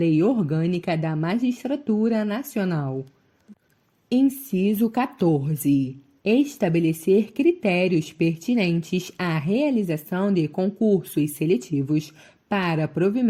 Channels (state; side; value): identical; both; correlation 1.00